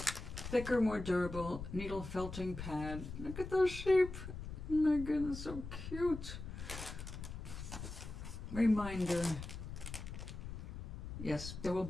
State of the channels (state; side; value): noise; left; rumble, 8 dB below the sound